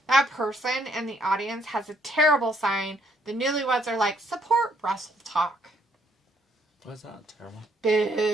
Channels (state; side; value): normal; both; correlation 0.69